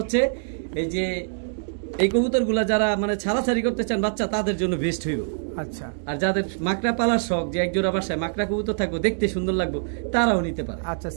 এই যে এই কবুতরগুলা যারা মানে ছাড়াছাড়ি করতে চান বাচ্চা, তাদের জন্য বেস্ট হইব। আচ্ছা, আর যাদের মাকড়া পালার শখ, যে একজোড়া বাসায় মাকড়া কবুতর থাকবো, দেখতে সুন্দর লাগবে, তারাও নিতে পারে। আচ্ছা,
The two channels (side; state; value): left; silent; digital silence